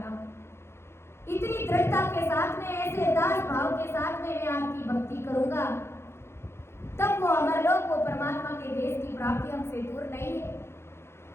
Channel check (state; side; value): late; right; 0.12 ms